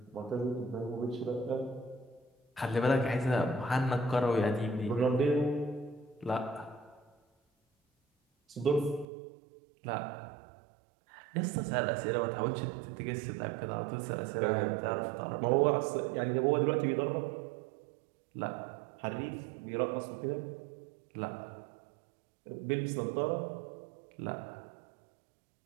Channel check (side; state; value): left; drops out; at 9.1 s